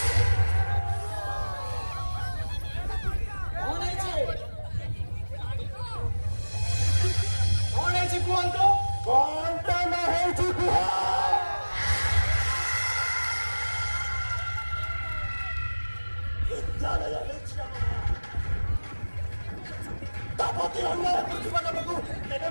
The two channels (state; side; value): inverted; both; correlation -1.00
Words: कौन है छे? कौन है छे कुहंतो? कौन तो ना है कुहा विद्यालय तापति अन्य प्रतिभा को तेरे